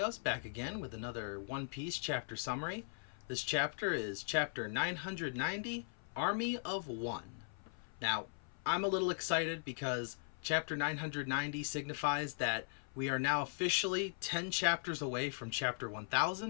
back again with another One Piece chapter summary. This chapter is chapter 990, Army of One. Now, I'm a little excited because chapter 990 signifies that we are now officially 10 chapters away from chapter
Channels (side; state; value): right; silent; 52 dB below the other